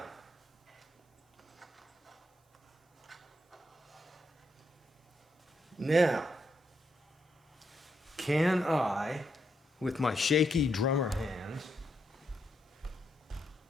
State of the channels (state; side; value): normal; both; correlation 0.80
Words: Now, can I, with my shaky drummer hands,